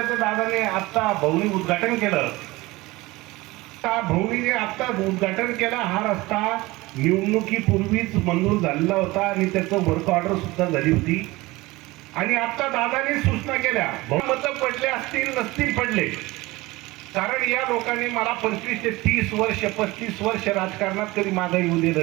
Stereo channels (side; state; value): left; quieter; 20.8 dB